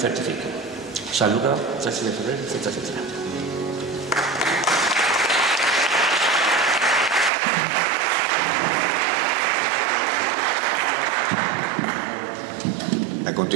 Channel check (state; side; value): drops out; left; at 7.3 s